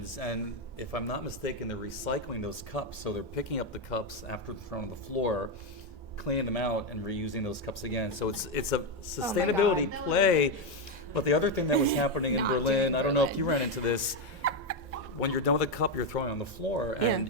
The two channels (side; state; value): both; normal; correlation 0.06